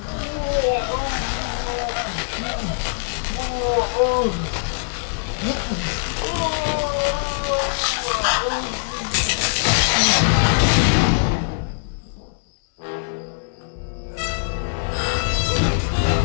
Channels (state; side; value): silent; right; digital silence